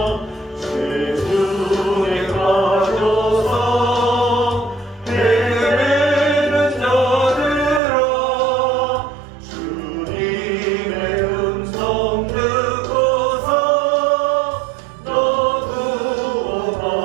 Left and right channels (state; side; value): drops out; left; at 7.8 s